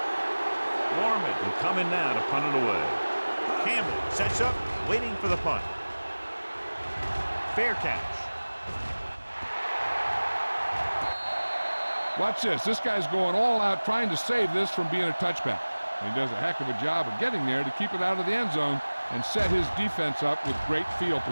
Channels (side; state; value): both; inverted; correlation -1.00